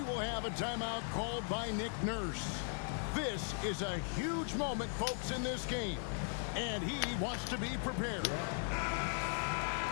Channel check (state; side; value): silent; right; 52 dB below the other